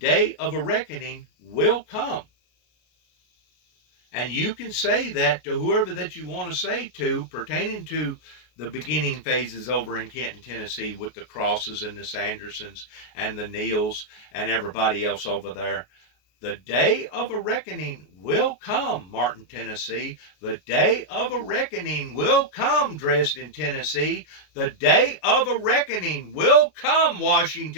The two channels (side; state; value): right; late; 33 ms